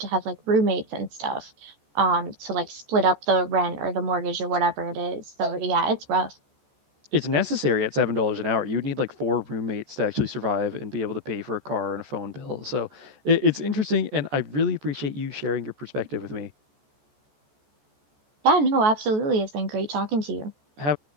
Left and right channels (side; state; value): left; late; 14 ms